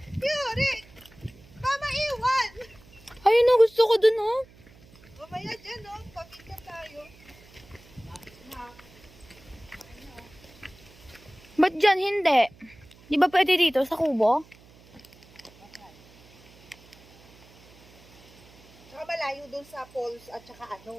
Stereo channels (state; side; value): noise; right; hum, 25 dB below the sound